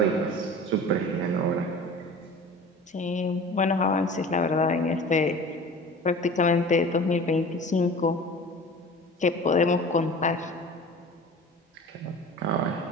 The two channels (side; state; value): both; normal; correlation 0.40